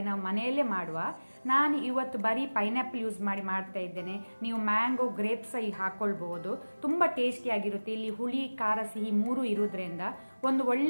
ನಾವು ಮನೆಯಲ್ಲೇ ಮಾಡುವ. ನಾನು ಇವತ್ತು ಬರೀ ಪೈನಾಪಲ್ ಯೂಸ್ ಮಾಡಿ ಮಾಡ್ತಾ ಇದ್ದೇನೆ. ನೀವು ಮ್ಯಾಂಗೋ ಗ್ರೇಪ್ಸ್ ಹಾಕೊಳ್ಬಹುದು. ತುಂಬ ಟೇಸ್ಟಿಯಾಗಿರುತ್ತೆ. ಇಲ್ಲಿ ಹುಳಿ ಖಾರ ಸಿಹಿ ಮೂರು ಇರೋದ್ರಿಂದ ಒಂದು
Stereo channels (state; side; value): inverted; both; correlation -1.00